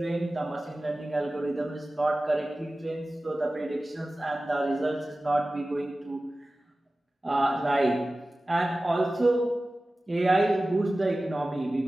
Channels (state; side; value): normal; both; correlation 0.96